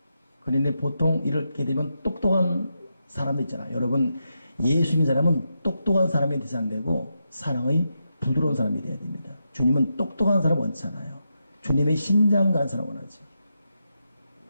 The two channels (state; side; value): inverted; both; correlation -0.86